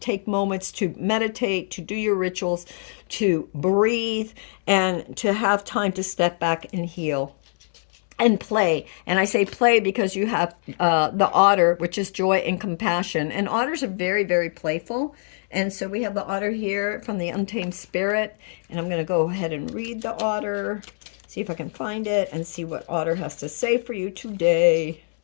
moments to meditate, to do your rituals, to breathe, and to have time to step back and heal. And play. And I say play because you have the otter, which is joy and compassion. And otters are very, very playful. And so we have the otter here from the Untamed Spirit. And I'm going to go ahead and read the otter, see if I can find it, and see what otter has to say for you today.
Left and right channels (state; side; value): silent; right; 63 dB below the other